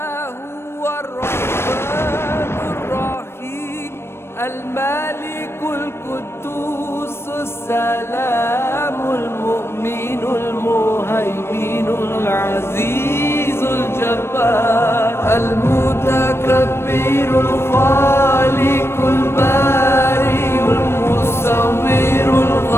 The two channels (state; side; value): late; right; 0.12 ms